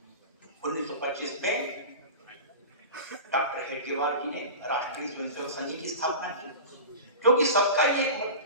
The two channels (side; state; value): both; inverted; correlation -0.31